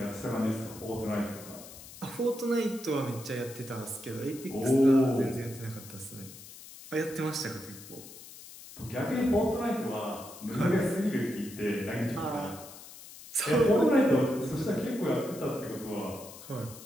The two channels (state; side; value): noise; left; hiss, 16 dB below the sound